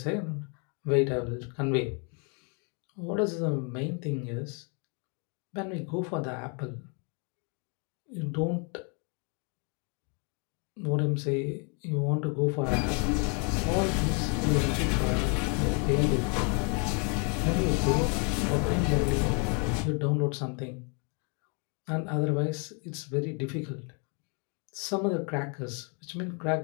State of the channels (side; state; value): right; quieter; 36.9 dB